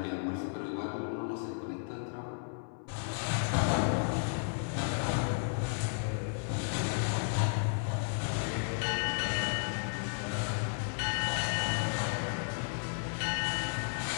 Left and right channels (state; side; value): silent; right; 55 dB below the other